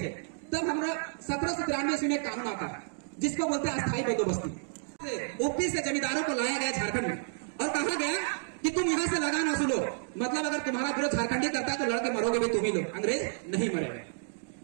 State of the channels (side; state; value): left; silent; digital silence